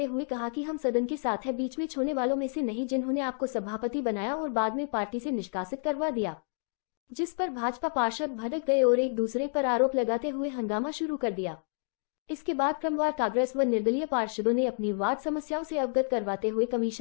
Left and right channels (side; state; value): right; silent; digital silence